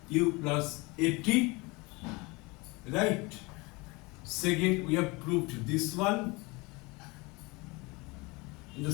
u plus at, right? Second we have proved this one. In the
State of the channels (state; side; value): quieter; right; 25.6 dB